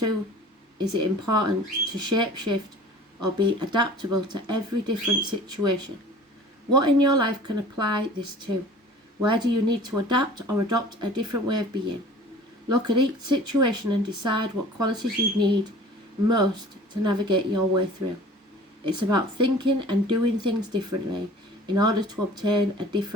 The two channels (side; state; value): both; normal; correlation 0.46